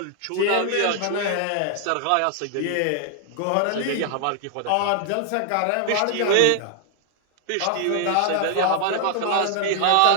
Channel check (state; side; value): different; both; correlation 0.00